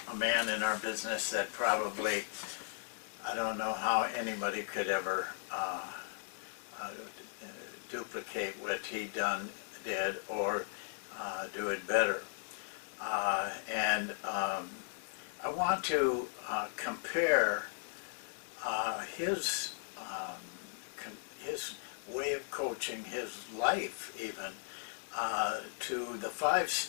a man in our business that probably, I don't know how anybody could ever duplicate what he did or do it better. I want to compare his way of coaching, his life even, to the 5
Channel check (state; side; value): silent; right; digital silence